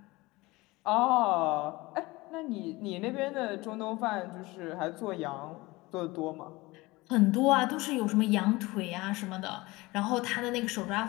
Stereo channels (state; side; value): quieter; right; 21.5 dB